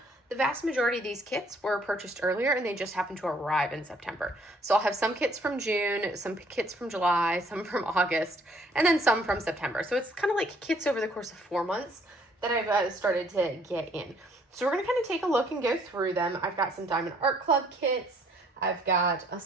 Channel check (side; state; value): both; normal; correlation 0.63